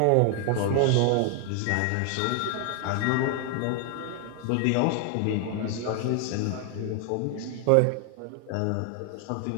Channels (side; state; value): both; different; correlation 0.00